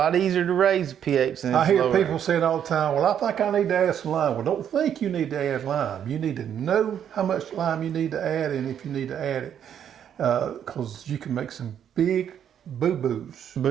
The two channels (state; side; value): quieter; left; 9.2 dB